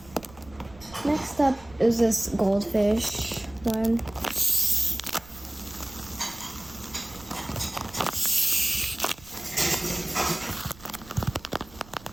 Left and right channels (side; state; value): right; noise; rumble, 21 dB below the sound